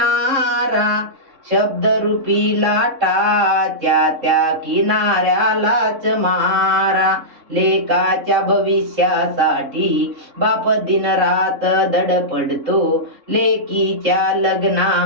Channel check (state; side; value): late; left; 3.6 ms